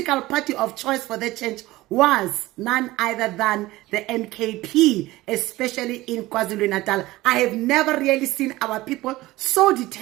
party of choice for the change was none other than the NKP, especially in KwaZulu-Natal. I have never really seen our people so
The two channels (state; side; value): quieter; left; 18.2 dB